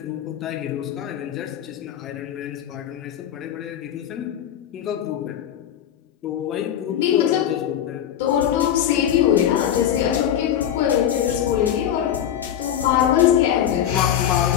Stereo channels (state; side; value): quieter; right; 10.2 dB